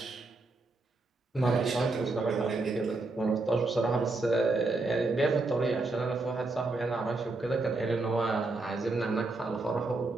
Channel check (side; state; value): left; quieter; 3.3 dB